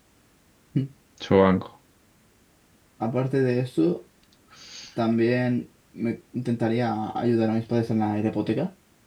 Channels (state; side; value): identical; both; correlation 1.00